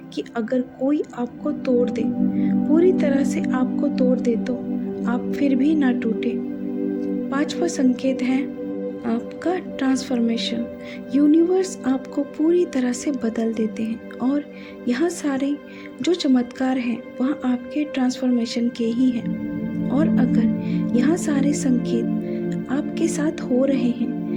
कि अगर कोई आपको तोड़ दे, पूरी तरह से आपको तोड़ दे, तो आप फिर भी ना टूटे। पांचवा संकेत है आपका ट्रांसफॉर्मेशन। यूनिवर्स आपको पूरी तरह से बदल देते हैं और यहाँ सारे जो चमत्कार हैं वह आपके ट्रांसफॉर्मेशन के ही हैं। और अगर यहाँ सारे संकेत आपके साथ हो रहे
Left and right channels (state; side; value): identical; both; correlation 1.00